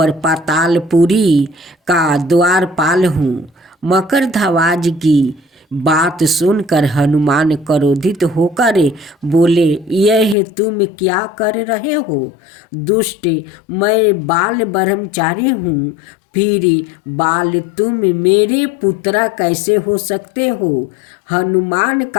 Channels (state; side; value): drops out; right; at 10.4 s